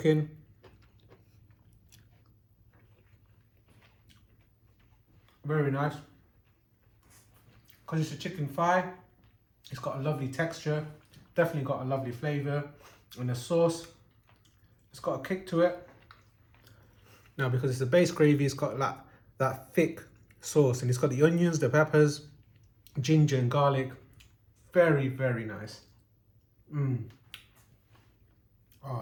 Very nice. Because it's a chicken thigh, it's got a lovely texture. Definitely got a lovely flavour. And the sauce, it's got a kick to it. Now, because it's a base gravy, it's got that thick sauce. And it's got the onions, the peppers, ginger and garlic. Very, very nice.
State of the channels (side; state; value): both; identical; correlation 1.00